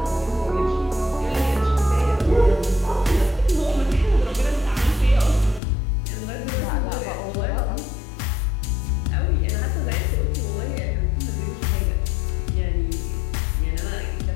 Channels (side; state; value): right; drops out; at 5.6 s